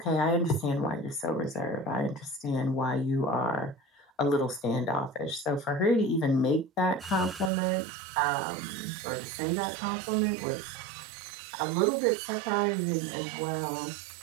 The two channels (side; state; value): left; drops out; at 7.5 s